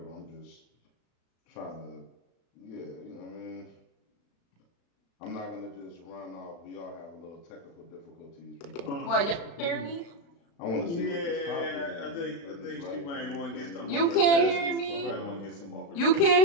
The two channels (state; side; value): late; right; 35 ms